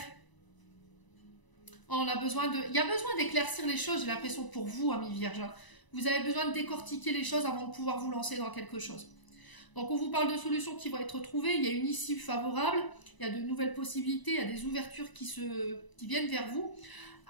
On a besoin de... Il y a besoin d'éclaircir les choses, j'ai l'impression, pour vous, Amis Vierges. Vous avez besoin de décortiquer les choses avant de pouvoir vous lancer dans quelque chose. Donc on vous parle de solutions qui vont être trouvées, il y a une issue favorable, il y a de nouvelles possibilités, il y a des ouvertures qui viennent vers vous.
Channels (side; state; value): right; late; 1.0 ms